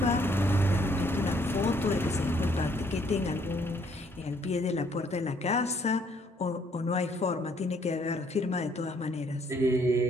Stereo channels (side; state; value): both; normal; correlation 0.66